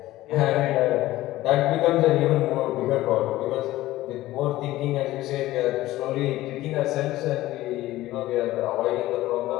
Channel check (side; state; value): right; quieter; 16.3 dB